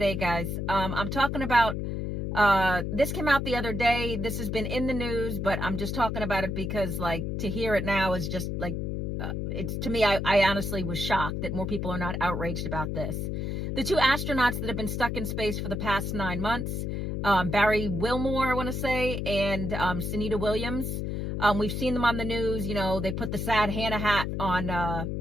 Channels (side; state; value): left; noise; hum, 2 dB below the sound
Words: guys? I'm talking about, this came out the other day. This has been in the news, but I'm just talking about it because, to hear it now is just, it's to me, I honestly was shocked that more people are not outraged about this. The two astronauts that have been stuck in space for the past 9 months, Barry Wilmore, I want to say, and Sunita Williams. We've seen them on the news. You know, they put the sad Hannah hat on